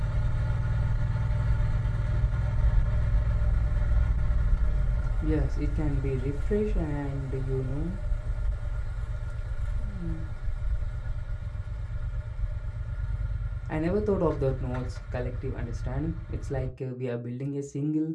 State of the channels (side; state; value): both; identical; correlation 1.00